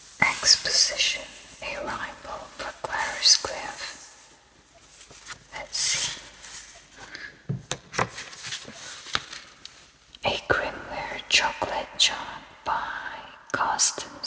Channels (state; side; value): identical; both; correlation 1.00